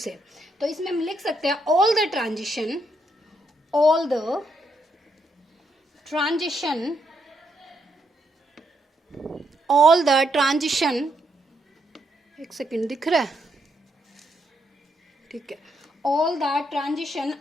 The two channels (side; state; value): both; normal; correlation 0.77